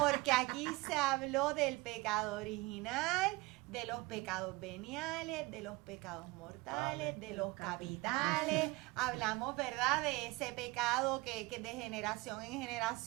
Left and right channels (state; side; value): quieter; left; 22.4 dB